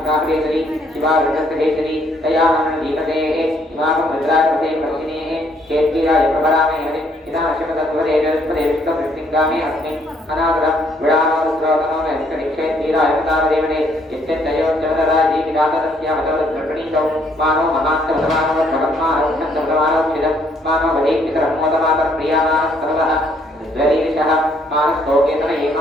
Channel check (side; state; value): both; normal; correlation 0.67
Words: शिवा रुद्रभेदरी तया नाम दीपतेः इमां रुद्रापते प्रसिनेः केत्वीराय प्रभरामे हरि इदा अशमतत्वरे जलस्पदे विष्णुवृत्तिङ्गामे अस्मि अनादरं विडानो रुद्रोतनो नैष्कनिक्षेत्वीराय प्रतापदेवने यत्यन्तयोच्चवदराजी विदातस्यामतवद्गर्भणीतौ मानो महान्तवसमानो भगवन्मानोक्षन्तवसमानो क्षिदं मानो वदेक्तिकरमोदमातर प्रियामानस्तवः द्वरीरिषः मानस्तोकेतन